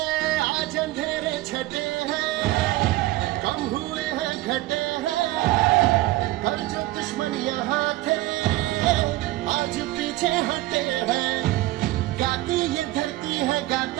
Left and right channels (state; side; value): quieter; left; 17.7 dB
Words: आज अंधेरे छटे हैं, कम हुए हैं घटे हैं, हर जो दुश्मन यहाँ थे आज पीछे हटे हैं। गाती ये धरती है,